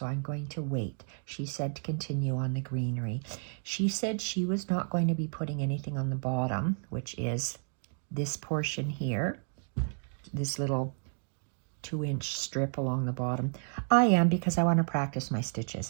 I'm going to wait. She said to continue on the greenery. She said she was not going to be putting anything on the bottom, which is this portion here, this little 2-inch strip along the bottom. I am, because I want to practice my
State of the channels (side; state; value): left; silent; 57 dB below the other